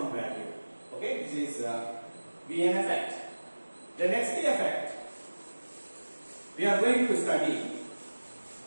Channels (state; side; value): inverted; both; correlation -1.00